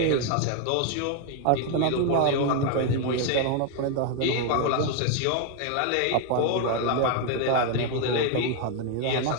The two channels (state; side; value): different; both; correlation 0.01